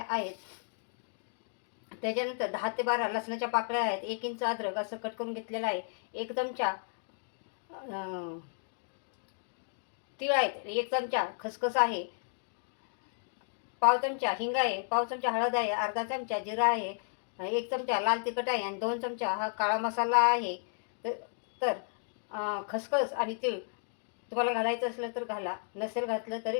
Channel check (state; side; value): silent; right; digital silence